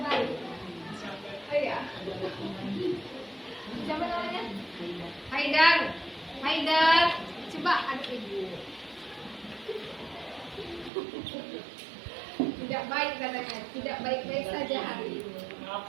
baik. Oh iya. Siapa namanya? Haidar. Haidar. Coba adik Ibu. Tidak baik katanya. Tidak baik-baik saja hari ini.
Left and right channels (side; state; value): left; drops out; at 10.9 s